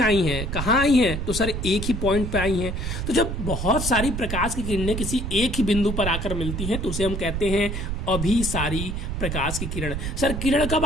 हैं। कहाँ आई हैं? तो सर एक ही पॉइंट पे आई हैं। तो जब बहुत सारी प्रकाश की किरणें किसी एक ही बिंदु पर आकर मिलती हैं तो उसे हम कहते हैं अभिसारी प्रकाश की किरण। सर किरण कब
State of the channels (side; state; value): right; noise; rumble, 3 dB below the sound